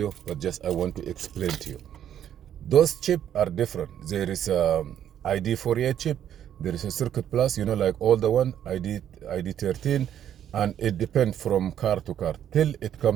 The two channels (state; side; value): quieter; left; 10.2 dB